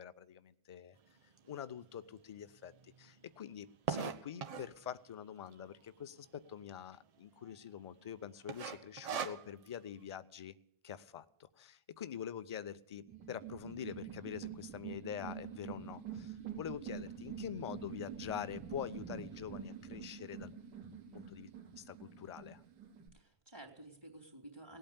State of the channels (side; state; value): left; late; 1.7 ms